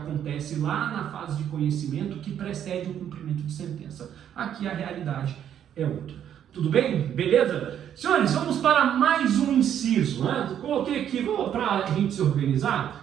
lá na fase de conhecimento que precede o cumprimento de sentença. Aqui a realidade é outra. Tudo bem? Beleza? Senhores, vamos para mais um inciso, né? Coloquei aqui, para a gente se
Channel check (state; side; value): quieter; left; 9.7 dB